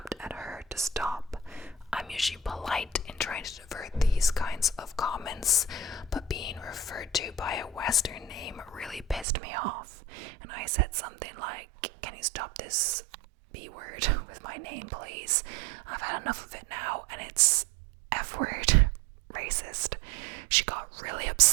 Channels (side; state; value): left; drops out; at 9.2 s